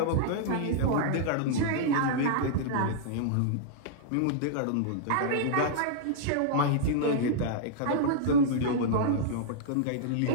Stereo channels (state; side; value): different; both; correlation -0.02